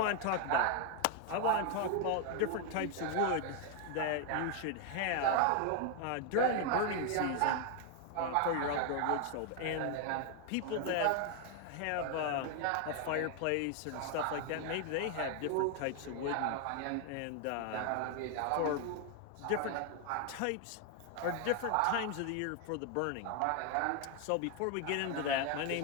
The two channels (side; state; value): both; different; correlation 0.01